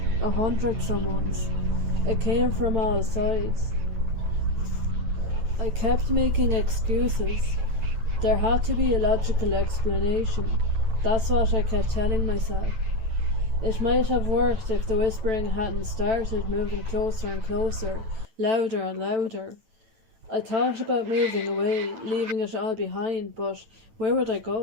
100 someones. It came from all sides. I kept making excuses. There had to be a logical explanation. That's what I kept telling myself. It might have worked if the whispering hadn't started moving closer and closer, louder and louder. I thought about moving away, leaving it all behind, but where would I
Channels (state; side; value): late; left; 9.1 ms